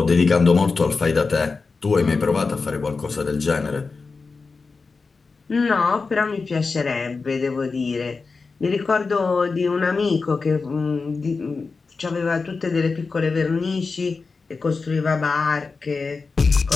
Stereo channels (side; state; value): right; quieter; 4.4 dB